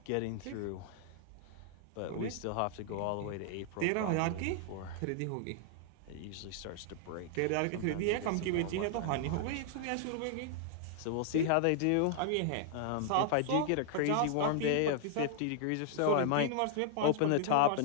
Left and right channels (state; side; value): different; both; correlation 0.00